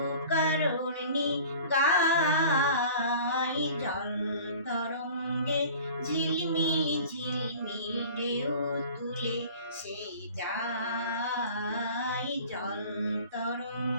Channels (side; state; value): both; inverted; correlation -0.43